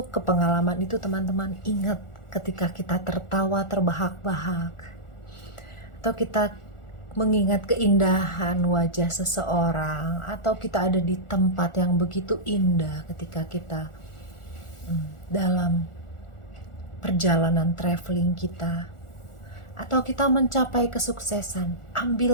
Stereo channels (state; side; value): late; right; 1.4 ms